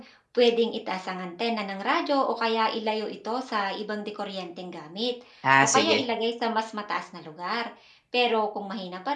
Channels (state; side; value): identical; both; correlation 1.00